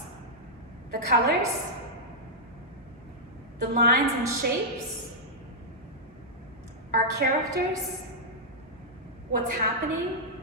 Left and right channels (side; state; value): both; normal; correlation -0.08